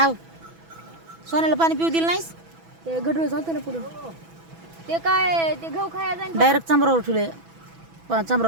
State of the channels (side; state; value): left; late; 6.1 ms